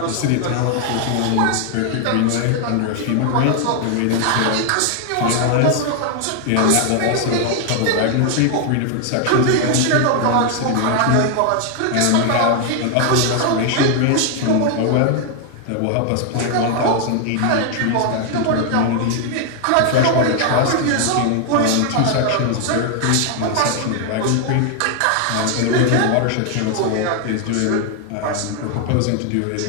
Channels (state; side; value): different; both; correlation 0.00